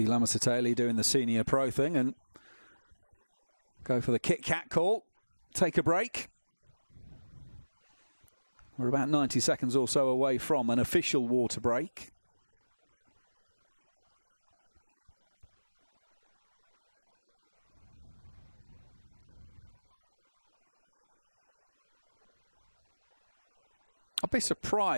Lamasateli doing the senior pro thing and go for the Kit Kat call. Take a break. We're about 90 seconds or so away from an official water break. I'll be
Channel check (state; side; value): inverted; both; correlation -1.00